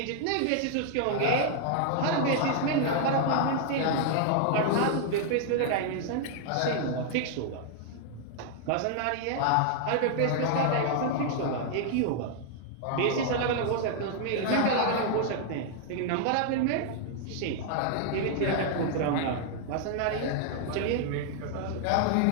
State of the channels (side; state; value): both; different; correlation 0.00